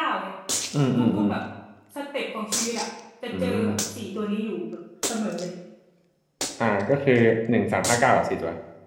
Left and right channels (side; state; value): both; identical; correlation 1.00